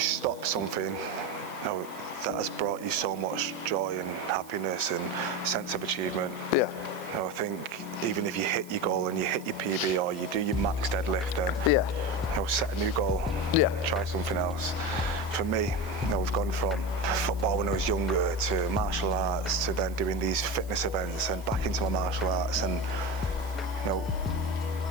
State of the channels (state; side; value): noise; right; hiss, 21 dB below the sound